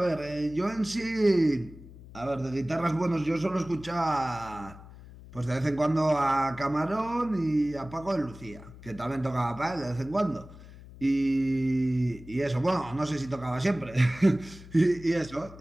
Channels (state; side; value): noise; left; hum, 18 dB below the sound